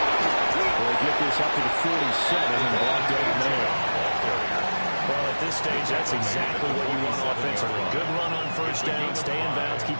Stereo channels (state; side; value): inverted; both; correlation -1.00